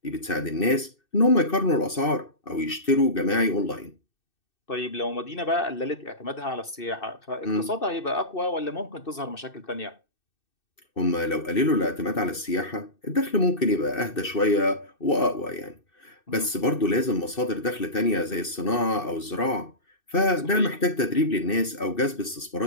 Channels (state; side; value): late; right; 2.6 ms